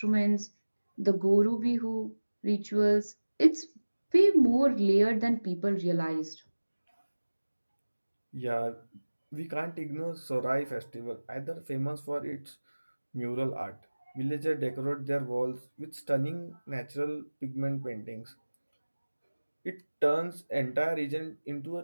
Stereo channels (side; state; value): both; inverted; correlation -1.00